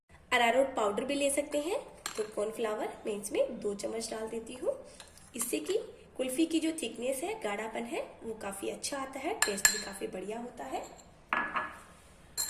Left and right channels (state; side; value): identical; both; correlation 1.00